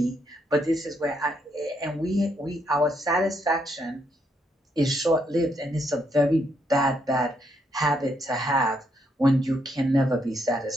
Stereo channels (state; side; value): normal; both; correlation 0.75